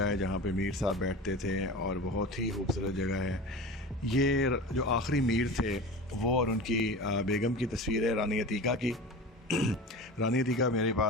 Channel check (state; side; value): normal; both; correlation 0.33